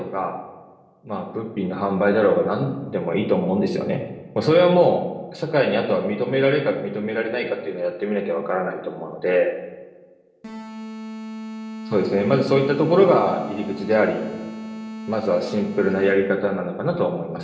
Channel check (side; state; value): both; identical; correlation 1.00